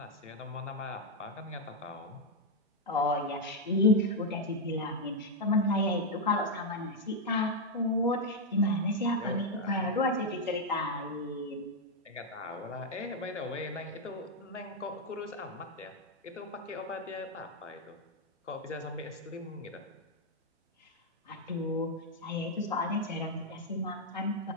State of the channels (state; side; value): normal; both; correlation 0.01